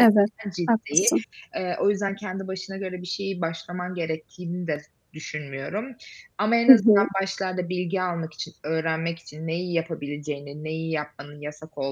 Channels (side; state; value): both; identical; correlation 1.00